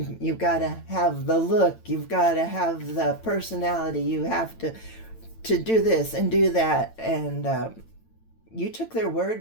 got to have the look, you've got to have the personality, you have to do this and do that. And you took their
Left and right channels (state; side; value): late; right; 9.0 ms